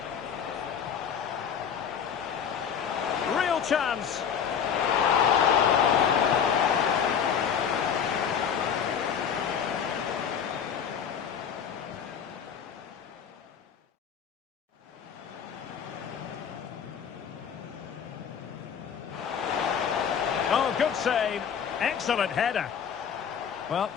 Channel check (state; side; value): quieter; right; 7.6 dB